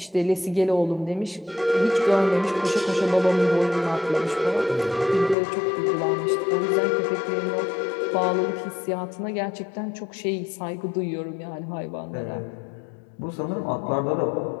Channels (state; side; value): drops out; right; at 5.4 s